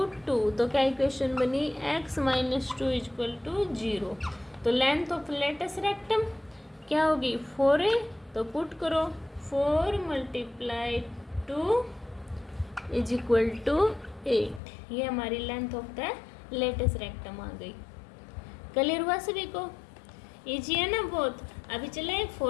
2। तो क्या इक्वेशन बनी, x - 2 इज इक्वल टू 0। तो लेंथ ऑफ लेटेस्ट रेक्टम क्या होगी 4a, तो पुट करो 4 मल्टीप्लाई 2 इज इक्वल टू 8। ये हमारी length of the latus rectum आ गई। क्लियर हुआ सभी को, इजी है ना बहुत। अभी चले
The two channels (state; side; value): drops out; right; at 14.6 s